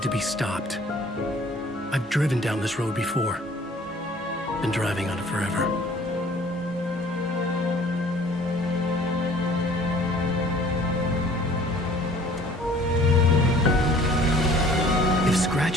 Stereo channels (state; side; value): normal; both; correlation 0.53